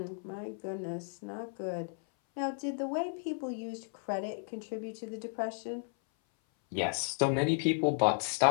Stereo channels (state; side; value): silent; right; 55 dB below the other